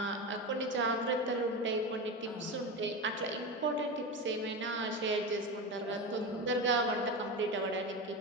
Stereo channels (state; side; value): normal; both; correlation 0.21